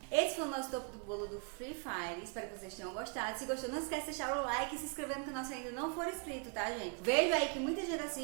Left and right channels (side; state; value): left; quieter; 37.9 dB